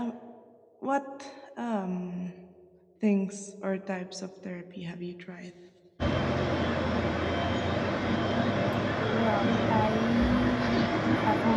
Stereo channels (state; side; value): identical; both; correlation 1.00